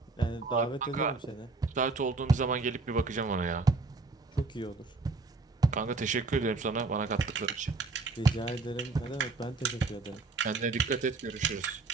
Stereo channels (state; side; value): quieter; left; 3.8 dB